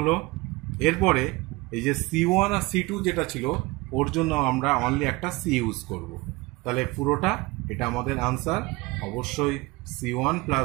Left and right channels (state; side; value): quieter; left; 23.0 dB